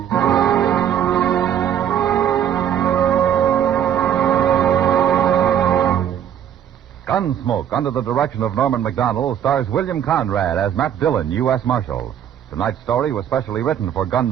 Gunsmoke, under the direction of Norman MacDonnell, stars William Conrad as Matt Dillon, U.S. Marshal. Tonight's story was specially written for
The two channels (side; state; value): left; quieter; 9.6 dB